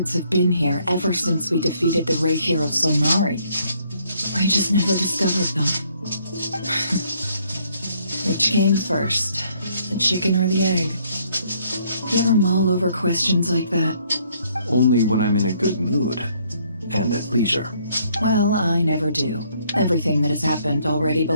have been here ever since we defeated the Ray Hero Solnari. We just never discovered them. Which came first, the chicken or the egg? You ever mull over questions like that? Only when I'm in a good mood and at leisure. Well, I never do. Everything that has happened already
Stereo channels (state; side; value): inverted; both; correlation -0.66